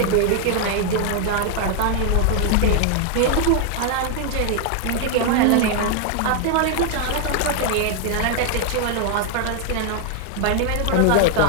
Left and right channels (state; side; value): different; both; correlation 0.00